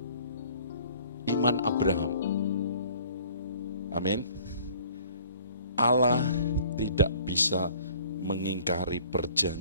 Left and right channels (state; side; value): inverted; both; correlation -0.54